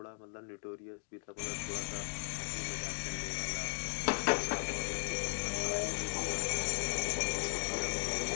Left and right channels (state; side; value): silent; right; digital silence